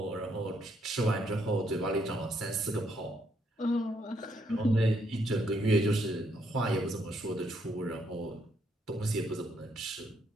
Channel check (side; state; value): both; normal; correlation 0.73